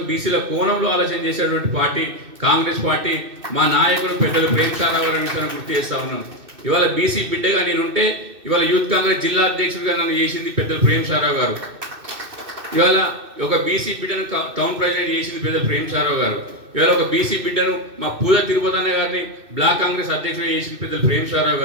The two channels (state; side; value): late; left; 2.6 ms